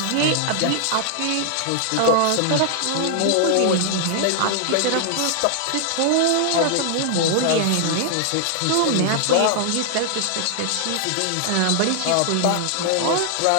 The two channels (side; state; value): both; different; correlation 0.00